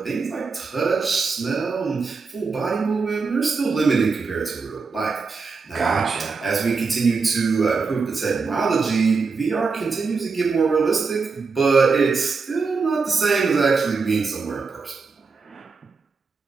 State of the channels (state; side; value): quieter; left; 4.7 dB